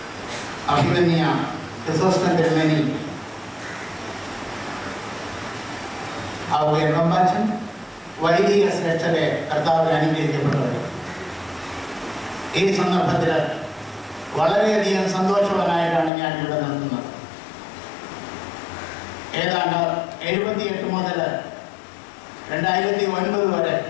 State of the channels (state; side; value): drops out; right; at 16.1 s